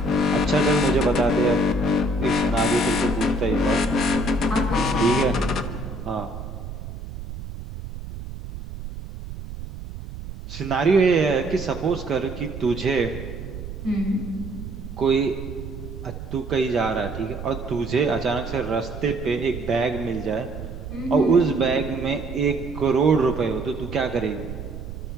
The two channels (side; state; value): right; noise; rumble, 10 dB below the sound